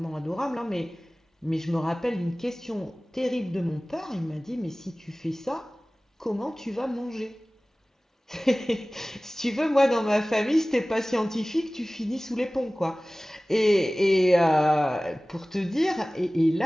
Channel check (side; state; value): both; normal; correlation 0.98